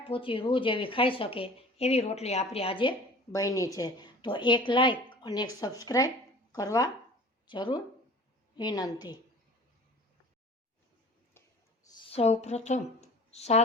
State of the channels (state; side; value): normal; both; correlation 0.44